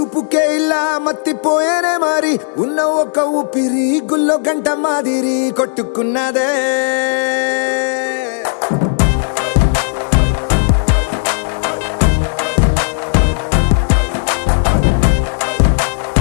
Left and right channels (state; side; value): silent; right; digital silence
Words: ఇలా మత్తిపోయేనే మారి ఉన్న ఒక ఊపిరి గుల్లో గంట మాదిరి కొట్టుకున్నదే